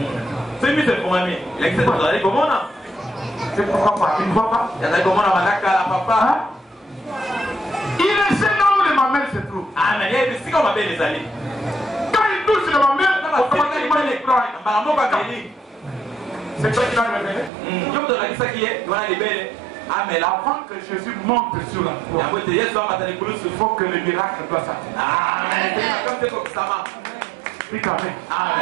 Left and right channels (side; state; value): left; drops out; at 17.5 s